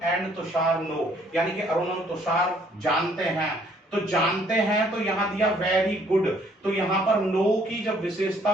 एंड तुषार नो, यानी कि अरुण और तुषार जानते हैं, तो जानते हैं, तो यहां दिया वेरी गुड, तो यहां पर नो की जब विशेषता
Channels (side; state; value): both; normal; correlation 0.63